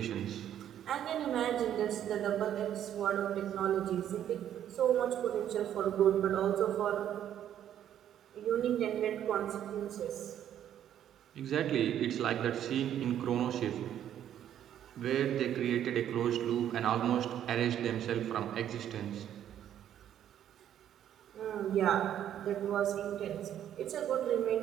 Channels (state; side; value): quieter; left; 10.5 dB